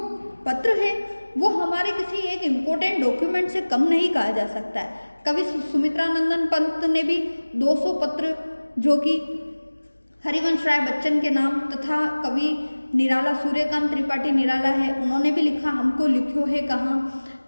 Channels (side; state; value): both; inverted; correlation -1.00